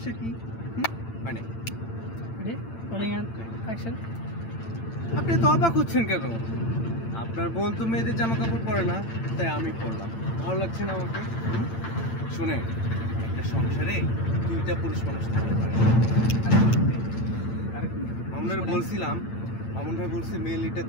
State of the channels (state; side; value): late; right; 8.9 ms